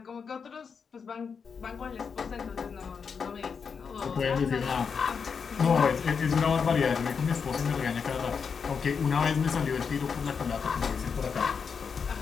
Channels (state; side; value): quieter; right; 6.0 dB